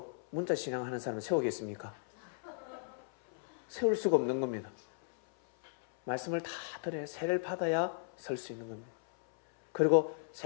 문자 신앙하는 사람은 세우겠습니까? 세울 수가 없는 겁니다. 말씀을 다 들어야 세례를 받아야 설 수 있는 겁니다. 그리고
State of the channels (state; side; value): silent; right; 54 dB below the other